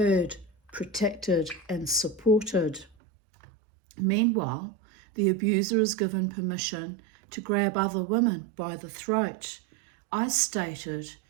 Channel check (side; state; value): left; drops out; at 3.0 s